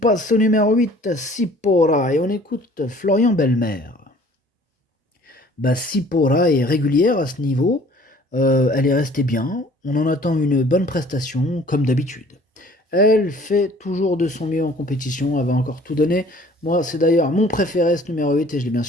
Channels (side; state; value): both; normal; correlation 0.53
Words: au numéro 8, Sipora, et on écoute Florian Belmer. Sipora est régulière à ce niveau. Elle est restée bien. On en attend une bonne prestation, comme d'habitude. Elle fait toujours de son mieux en compétition, elle va encore tout donner. Moi, c'est d'ailleurs mon préféré, ce numéro 8, et je l'ai bien